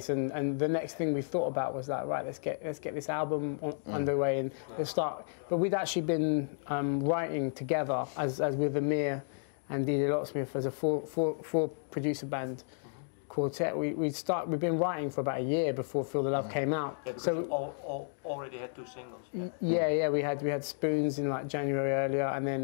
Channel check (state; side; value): silent; right; digital silence